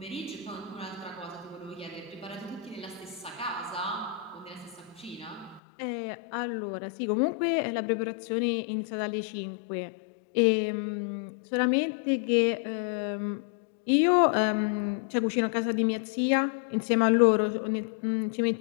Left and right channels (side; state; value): right; drops out; at 5.6 s